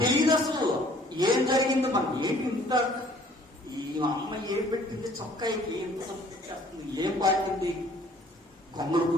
తెలియదు అసలు ఏం జరిగిందో. మనకి ఏంటి ఇంత, ఈ అమ్మ ఏం పెట్టింది చొక్కాయికి, ఎంత చేస్తుంది, ఏం పాటింది, కొంగలు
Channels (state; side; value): normal; both; correlation 0.56